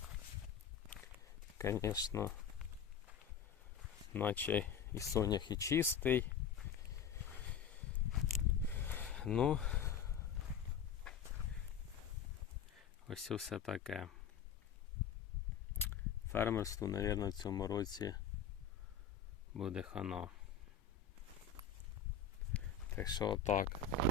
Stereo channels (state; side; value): quieter; right; 7.1 dB